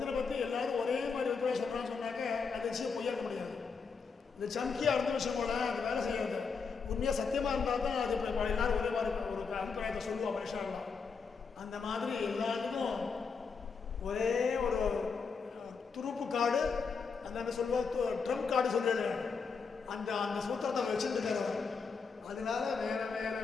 பற்றி எல்லாரும் ஒரே மாதிரி வித்தியாசம் சொல்கிறான்னு சொன்னாக்க அது விஷயம் பொய்யாக்க முடியாது. இந்த சம்கியாக இருந்த விஷயம் போல அந்த வேலை செய்யாது. உண்மையாக சத்தியமாக இருந்தால் தான் அது இப்போ எல்லாரும் ஒரே மாதிரி ஒரு அபிப்பிராயத்தை சொல்லுவோம் மனுஷாலாம். அந்த மாதிரி எல்லாத்துக்கும் ஒரே ஒரு துருப்பு கார்டு, அந்த சொல்லுவோம் ட்ரம்ப் கார்டு சொல்லிடு, அந்த அந்த சூத்திரத்தை வச்சுட்டு இருக்கார். அதனால வேற வேற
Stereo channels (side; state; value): right; quieter; 5.3 dB